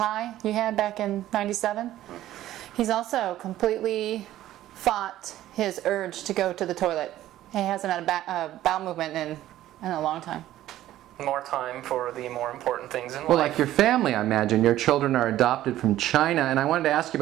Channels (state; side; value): quieter; left; 13.7 dB